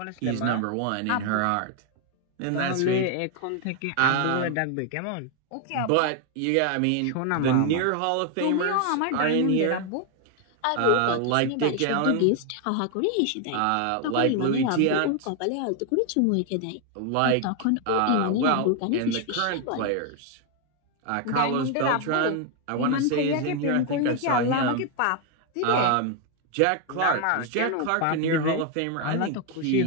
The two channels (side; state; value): both; different; correlation 0.00